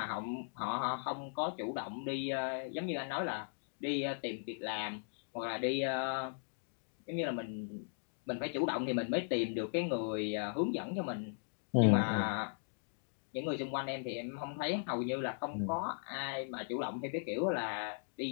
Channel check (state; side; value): silent; right; digital silence